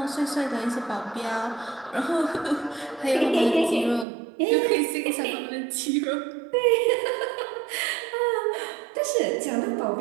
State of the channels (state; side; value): drops out; left; at 4.0 s